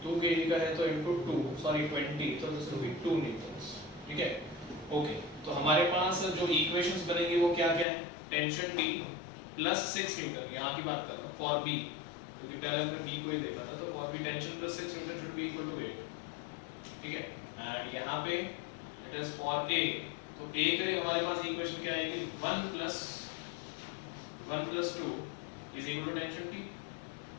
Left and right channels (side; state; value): right; drops out; at 7.9 s